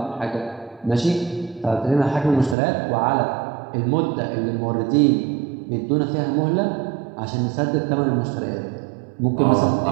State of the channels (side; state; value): left; drops out; at 2.6 s